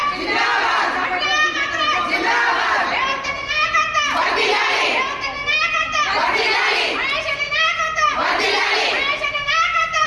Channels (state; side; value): identical; both; correlation 1.00